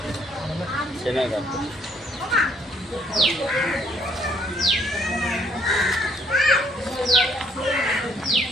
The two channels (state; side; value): normal; both; correlation 0.66